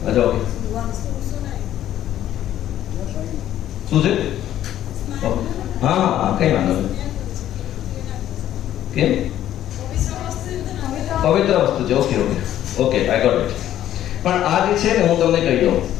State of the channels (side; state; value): right; quieter; 12.0 dB